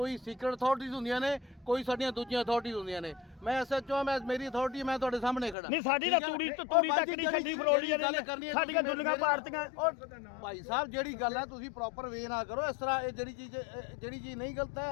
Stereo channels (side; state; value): right; drops out; at 5.6 s